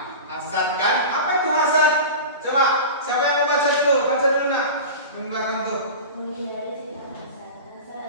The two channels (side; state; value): both; inverted; correlation -0.30